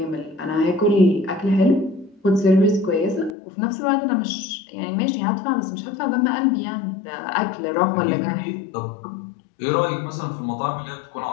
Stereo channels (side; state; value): right; drops out; at 3.4 s